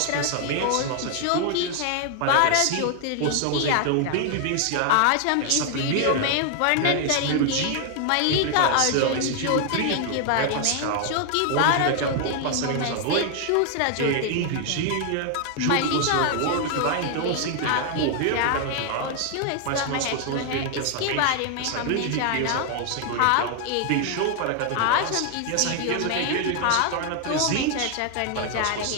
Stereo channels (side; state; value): both; different; correlation 0.00